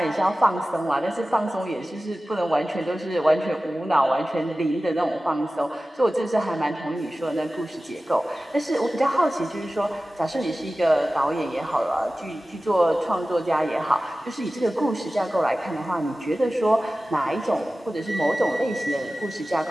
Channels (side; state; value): both; normal; correlation 0.96